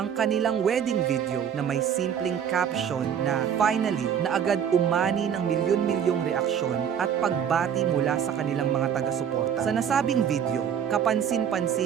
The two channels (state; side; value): quieter; left; 8.3 dB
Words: kanilang wedding video na may simpleng caption na "Finally" na agad umani ng milyon-milyong reaksyon at pagbati mula sa kanilang mga taga-suporta. Sa nasabing video,